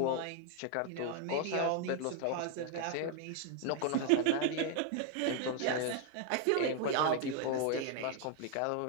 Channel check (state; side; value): different; both; correlation 0.01